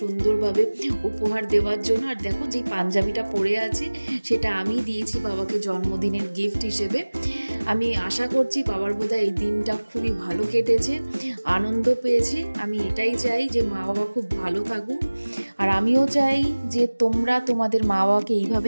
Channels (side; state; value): both; inverted; correlation -1.00